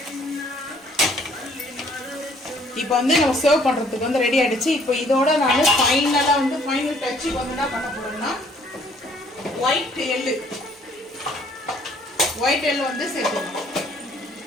இப்போ வந்து நம்ம சர்வ் பண்ணுறதுக்கு வந்து ரெடி ஆகிடுச்சு. இப்போ இதோட நான் ஃபைனலாக வந்து ஃபைனல் டச்சுக்கு வந்து என்ன பண்ண போகிறேன்னா ஒயிட் எள்ளு வந்து சேர்த்துக்கலாம்.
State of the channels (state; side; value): normal; both; correlation 0.61